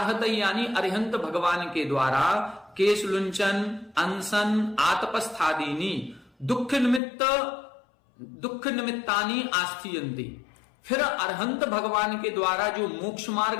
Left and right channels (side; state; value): right; drops out; at 7.0 s